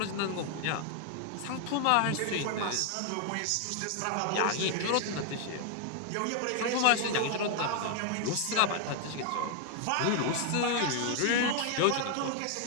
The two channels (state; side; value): different; both; correlation 0.00